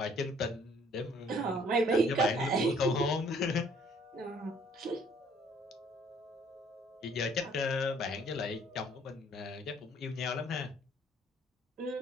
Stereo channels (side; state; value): both; normal; correlation 0.60